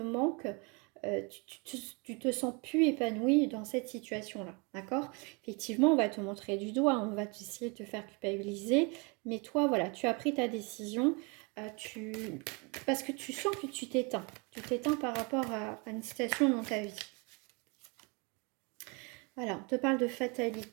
tu te sens plus épanoui dans cette situation-là, d'accord? Effectivement, on va te montrer du doigt, on va essayer de te faire culpabiliser, mais toi, voilà, tu as pris ta décision, tu... parce que tu sens que tu t'éteins par rapport à une situation dans ta vie. Voilà, on te parle de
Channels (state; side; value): quieter; left; 31.0 dB